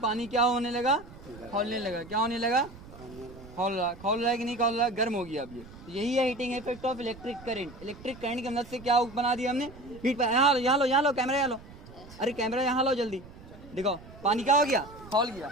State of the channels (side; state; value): right; noise; rumble, 18 dB below the sound